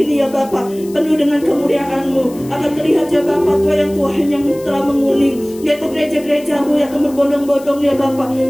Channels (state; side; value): noise; left; hiss, 21 dB below the sound